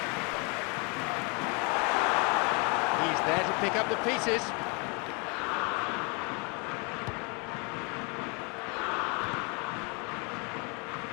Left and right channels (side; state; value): right; quieter; 32.5 dB